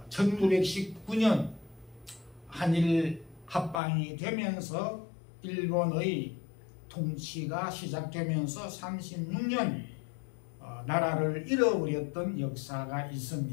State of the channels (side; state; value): right; drops out; at 3.8 s